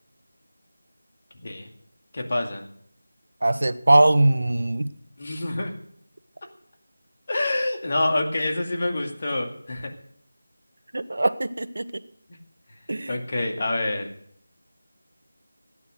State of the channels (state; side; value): inverted; both; correlation -0.97